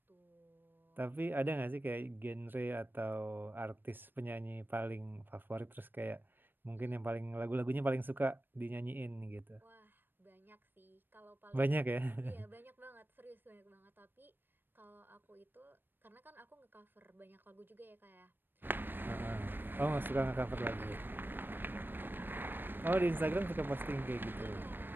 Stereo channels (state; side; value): late; left; 0.095 ms